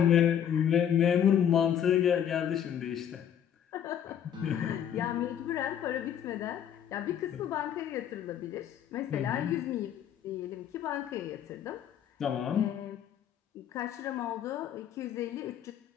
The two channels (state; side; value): quieter; right; 9.4 dB